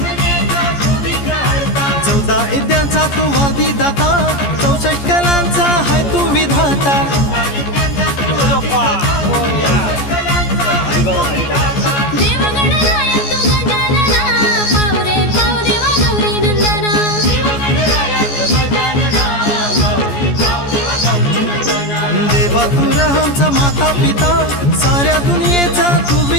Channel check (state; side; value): late; right; 14 ms